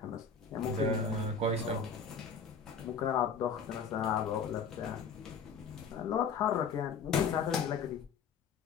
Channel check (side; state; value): right; quieter; 5.6 dB